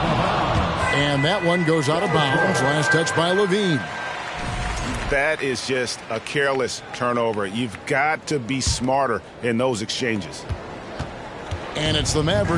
And that one goes out of bounds. Last touch by Levine. That is just a careless turnover. You've got to be smarter in those exchanges. And it's the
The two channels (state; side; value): identical; both; correlation 1.00